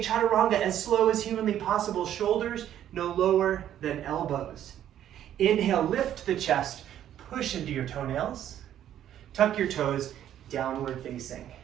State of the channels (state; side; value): quieter; left; 11.0 dB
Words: chaturanga as slow as humanly possible. Shoulders no lower than elbows. Inhale, lift the chest, push into your toenails. Tuck your toes, downward facing.